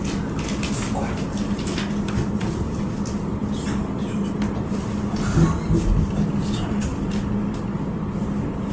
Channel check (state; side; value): identical; both; correlation 1.00